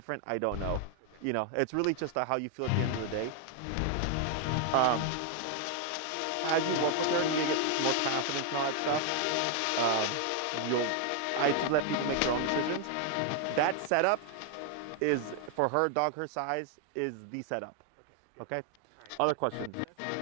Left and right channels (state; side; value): different; both; correlation 0.00